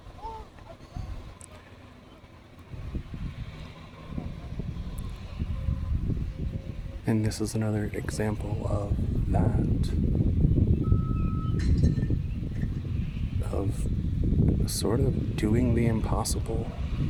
And this is another example of that, of sort of doing the impossible.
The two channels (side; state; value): both; identical; correlation 1.00